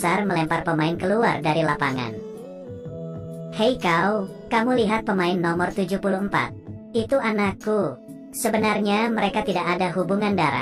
melempar pemain keluar dari lapangan. "Hei kau, kamu lihat pemain nomor 74? Itu anakku. Sebenarnya mereka tidak ada hubungan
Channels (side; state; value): both; identical; correlation 1.00